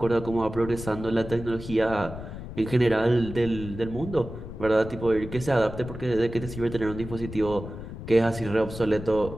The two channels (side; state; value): left; noise; rumble, 10 dB below the sound